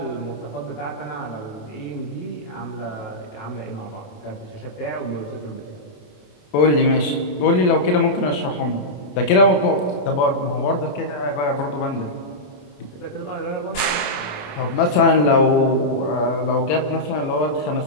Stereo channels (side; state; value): right; late; 28 ms